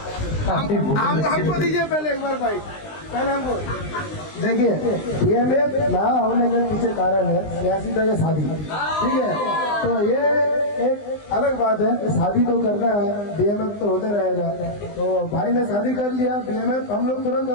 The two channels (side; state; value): right; late; 20 ms